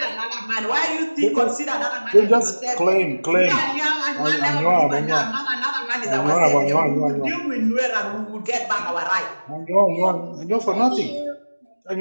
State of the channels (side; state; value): both; inverted; correlation -1.00